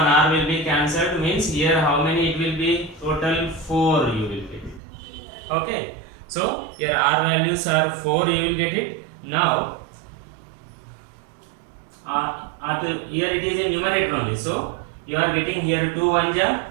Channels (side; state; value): left; drops out; at 4.8 s